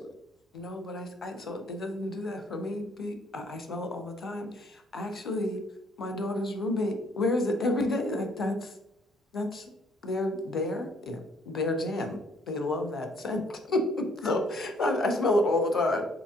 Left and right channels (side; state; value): both; normal; correlation 0.63